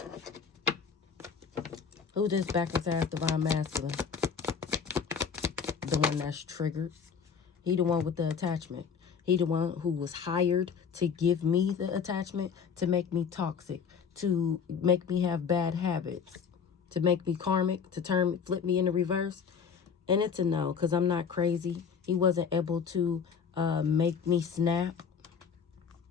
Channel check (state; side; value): quieter; right; 6.5 dB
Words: Who's this backwards ass divine masculine? The one that's triggered. He the one with the attachment. He the one who was hired to give me the attachment, to make me toxic, to make me have bad habits, to make me karmic, to flip me in the reverse. And it's a no, because I'm not crazy. He wasn't able to make me snap.